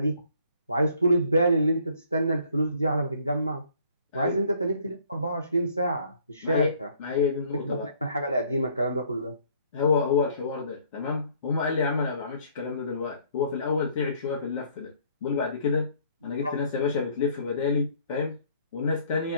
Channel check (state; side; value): inverted; both; correlation -0.61